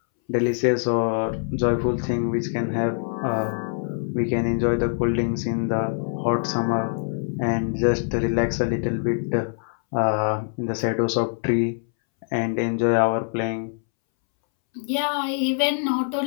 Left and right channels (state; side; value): silent; right; 63 dB below the other